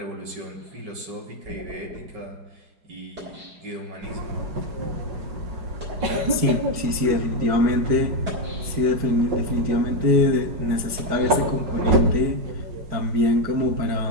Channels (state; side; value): late; left; 4.6 ms